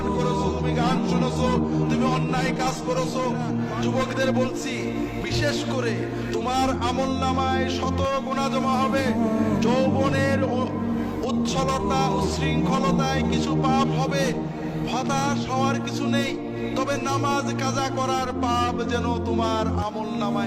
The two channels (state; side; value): identical; both; correlation 1.00